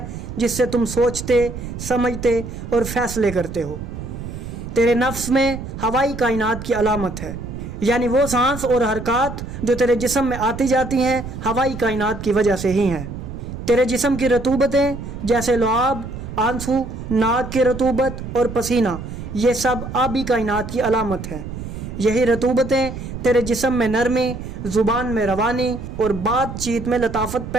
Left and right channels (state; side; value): noise; right; rumble, 9 dB below the sound